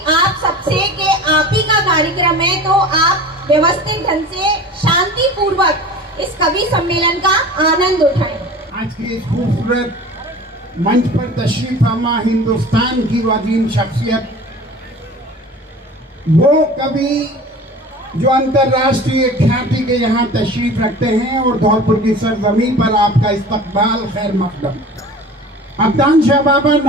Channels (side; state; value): both; normal; correlation 0.39